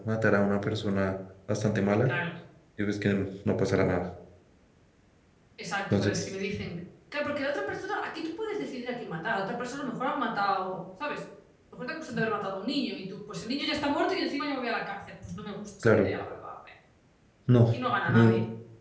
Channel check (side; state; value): both; identical; correlation 1.00